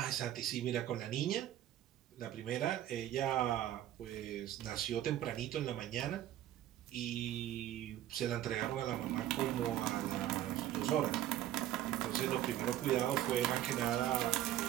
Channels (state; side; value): quieter; left; 12.8 dB